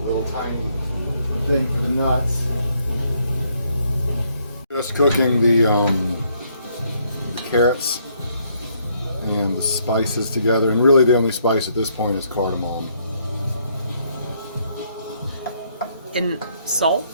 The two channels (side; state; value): both; inverted; correlation -0.70